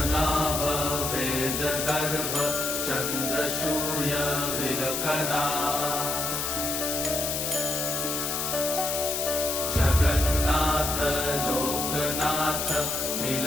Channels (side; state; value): left; noise; hiss, 1 dB below the sound